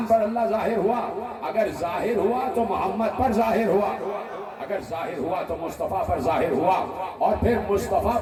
پر اللہ ظاہر ہوا؟ اگر ظاہر ہوا تو محمد پر ظاہر ہوا، اگر ظاہر ہوا تو مصطفیٰ پر ظاہر ہوا، اور پھر مصطفیٰ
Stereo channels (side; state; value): both; identical; correlation 1.00